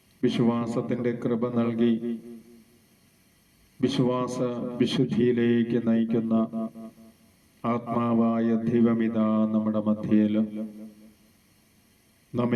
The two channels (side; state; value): both; identical; correlation 1.00